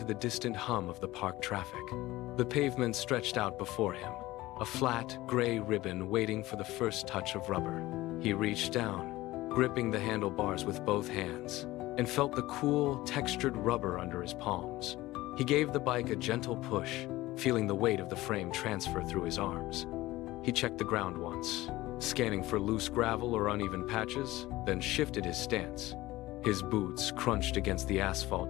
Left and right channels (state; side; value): quieter; right; 17.9 dB